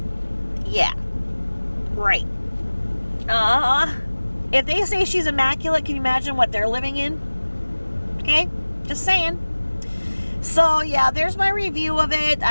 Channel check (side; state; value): both; inverted; correlation -1.00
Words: Yeah. Right. If they say she's immaculate, can you imagine what they're living in? Okay? Just saying. So, yeah, there's my review of it.